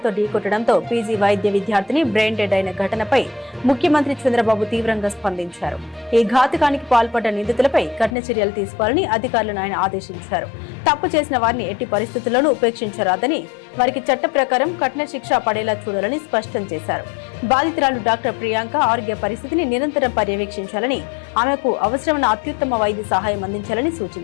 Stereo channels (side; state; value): right; drops out; at 8.2 s